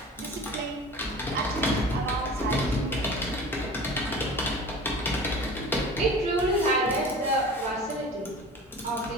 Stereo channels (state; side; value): normal; both; correlation 0.39